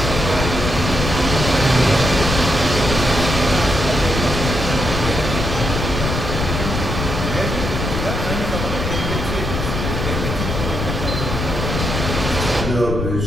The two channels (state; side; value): noise; left; rumble, 3 dB below the sound